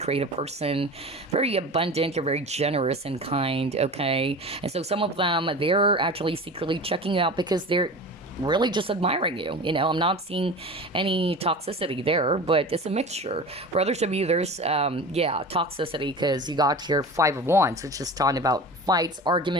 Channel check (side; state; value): both; normal; correlation 0.33